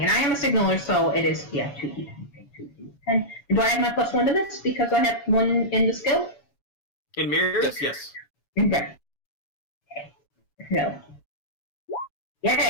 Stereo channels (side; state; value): right; late; 7.2 ms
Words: and I am a signaler, so it is 2d10. 2d10. Do I have my +1 to this because I have 1 in the skill? In mirrors, yes. Okay. No.